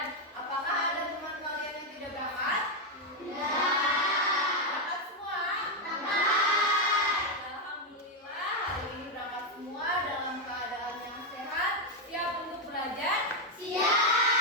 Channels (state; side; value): normal; both; correlation 0.03